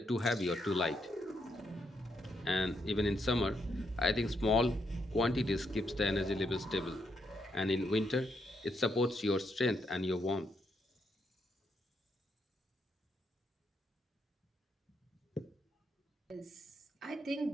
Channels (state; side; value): normal; both; correlation 0.78